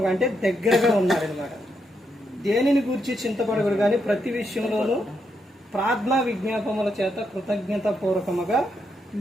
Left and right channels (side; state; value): both; normal; correlation 0.81